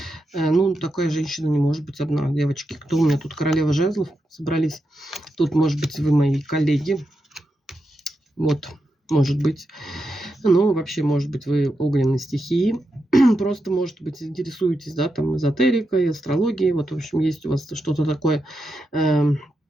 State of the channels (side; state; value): both; normal; correlation 0.86